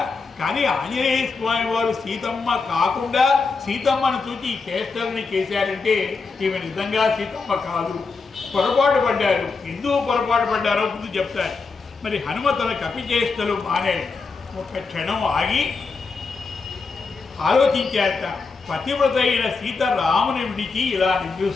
కానీ ఆంజనేయ స్వామి వారు సీతమ్మ కాకుండా సీతమ్మను చూచి ఈ చేష్టలని చేశారంటే ఈమె నిజంగా సీతమ్మ కాదు, పొరపాటు పడ్డారు. ఎందుకు పొరపాటు పడ్డారో ముందు చెప్తారు. మరి హనుమ తన కపిచేష్టలు మానేడు. ఒక క్షణం ఆగి ఆలోచించారట, పతివ్రత అయిన సీత రాముని విడిచి ఇలా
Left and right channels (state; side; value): quieter; right; 4.5 dB